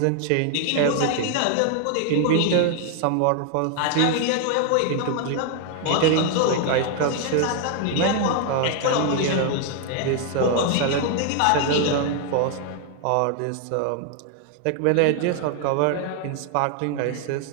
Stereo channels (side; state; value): both; different; correlation 0.00